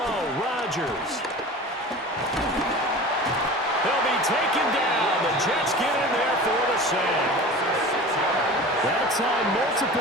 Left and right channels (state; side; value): normal; both; correlation 0.36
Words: Rodgers. He'll be taken down. The Jets get in there for the sack. That time,